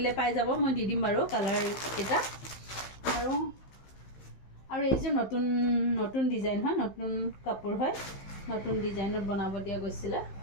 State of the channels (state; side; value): late; right; 15 ms